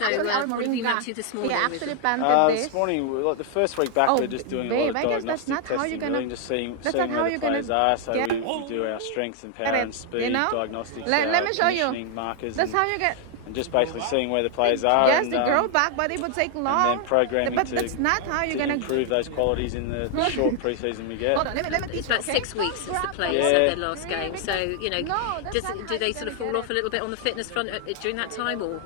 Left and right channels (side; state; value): both; different; correlation 0.00